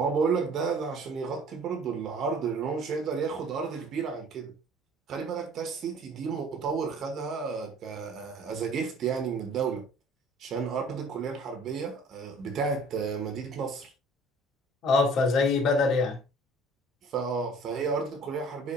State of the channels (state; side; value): normal; both; correlation 0.50